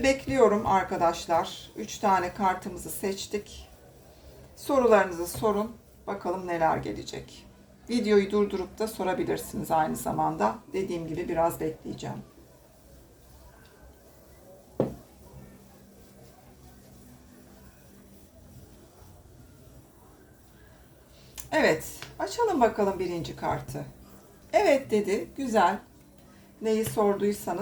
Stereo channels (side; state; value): both; identical; correlation 1.00